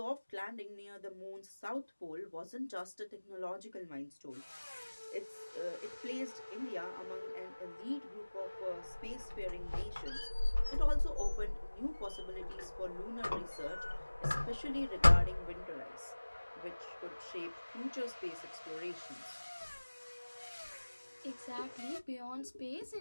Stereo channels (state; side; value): inverted; both; correlation -1.00